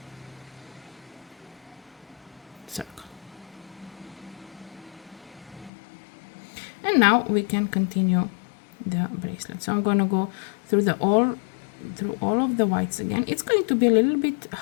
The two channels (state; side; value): drops out; right; at 5.7 s